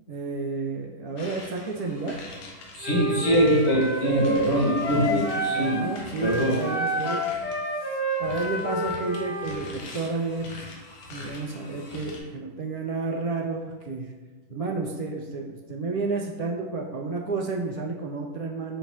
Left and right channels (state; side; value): late; right; 10 ms